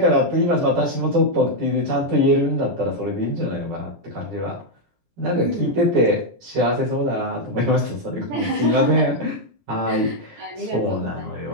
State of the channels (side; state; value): left; late; 17 ms